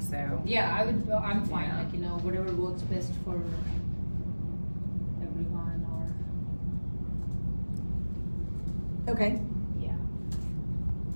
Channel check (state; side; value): inverted; both; correlation -1.00